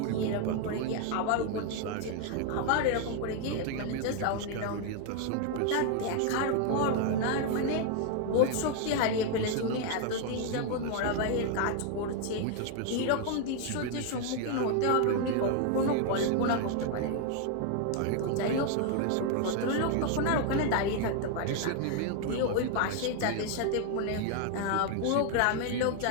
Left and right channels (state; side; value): different; both; correlation 0.00